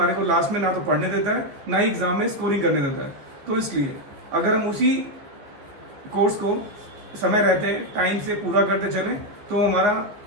को लास्ट में ना तो पढ़ने देता है ना ही एग्जाम में स्कोरिंग करने देता है। तो इसलिए अगर हम उसी कोर्स को समय रहते टाइम से पूरा करते चलें तो हमारा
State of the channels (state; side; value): late; left; 14 ms